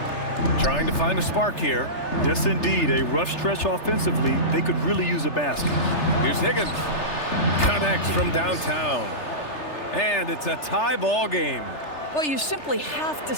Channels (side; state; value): right; late; 3.3 ms